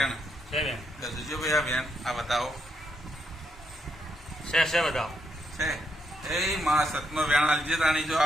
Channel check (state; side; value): normal; both; correlation 0.78